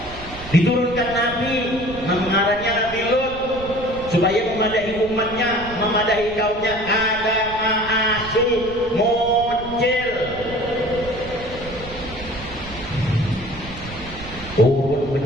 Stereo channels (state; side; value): noise; right; rumble, 14 dB below the sound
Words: Diturunkan Nabi, mengarahnya Nabi Lut, supaya memadahi umatnya, memadahi kaumnya. Ada ma'asi muncul, turun